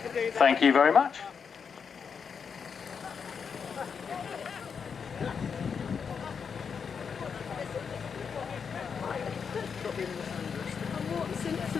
Thank you very much.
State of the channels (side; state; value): right; quieter; 6.3 dB